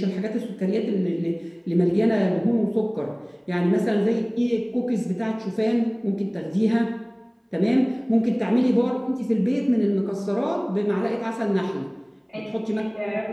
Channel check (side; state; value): both; identical; correlation 1.00